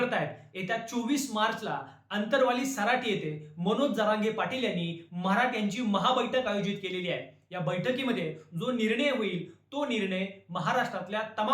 येत्या 24 मार्चला अंतरवाली सराटी येथे मनोज जरांगे पाटील यांनी मराठ्यांची महाबैठक आयोजित केलेली आहे. या बैठकीमध्ये जो निर्णय होईल तो निर्णय महाराष्ट्रातल्या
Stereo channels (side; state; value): both; identical; correlation 1.00